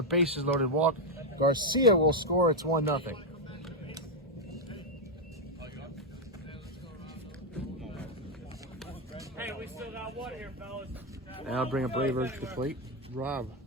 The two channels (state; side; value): normal; both; correlation 0.03